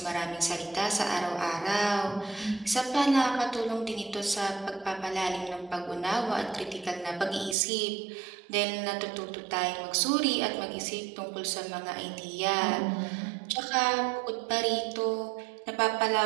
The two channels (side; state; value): left; drops out; at 7.6 s